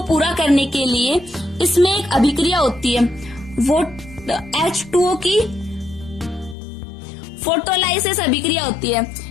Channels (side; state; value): right; drops out; at 6.6 s